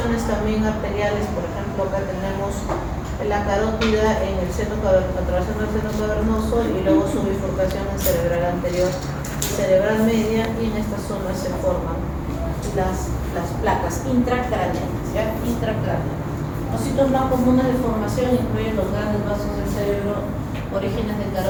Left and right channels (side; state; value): both; identical; correlation 1.00